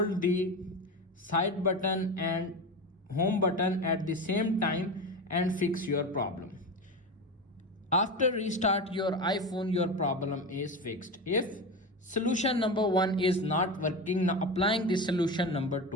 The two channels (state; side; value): normal; both; correlation 0.22